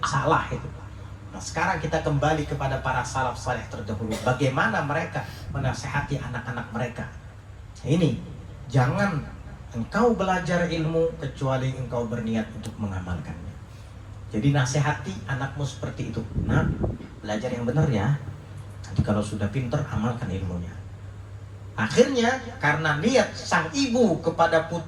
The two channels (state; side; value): identical; both; correlation 1.00